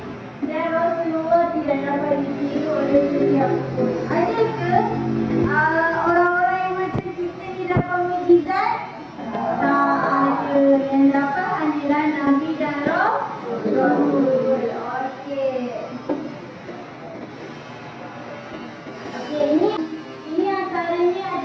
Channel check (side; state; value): both; identical; correlation 1.00